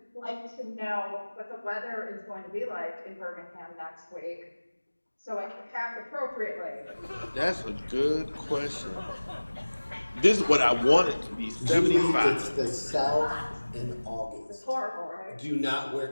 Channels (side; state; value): both; inverted; correlation -1.00